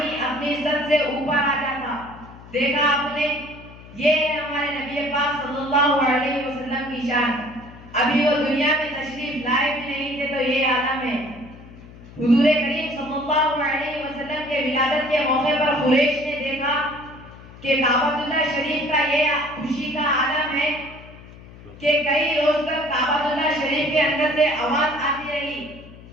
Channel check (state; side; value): noise; left; hum, 19 dB below the sound